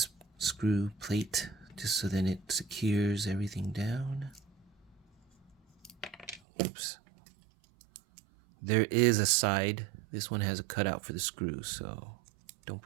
screw plate just so then it secures everything down. Oops. There is a side. This one has a cutout for the screw, so don't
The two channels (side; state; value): left; drops out; at 6.4 s